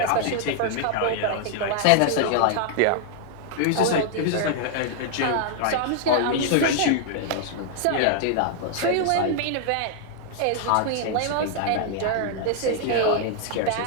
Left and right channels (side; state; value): both; different; correlation 0.00